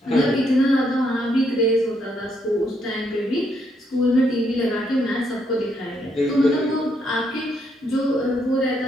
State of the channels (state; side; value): normal; both; correlation 0.74